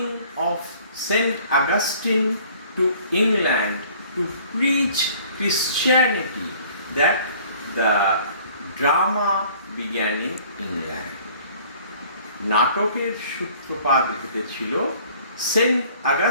of Saint Augustine to England to preach Christianity that the drama began in England. নাটকের সূত্রপাত ঘটেছিল সেন্ট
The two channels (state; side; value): inverted; both; correlation -0.53